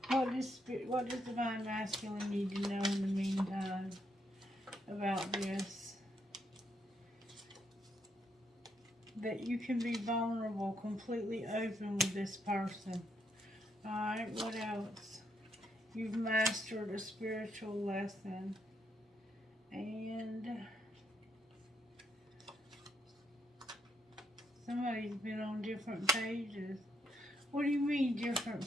What does Divine Masculine need to know in the meantime about this? That you can be vulnerable, completely open with this person. Alright, what else? You've mastered a spiritual lesson. And somebody's been on different pages. What do you mean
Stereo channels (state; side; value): normal; both; correlation 0.76